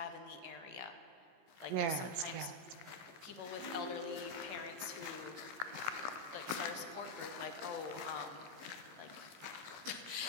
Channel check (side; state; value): left; late; 17 ms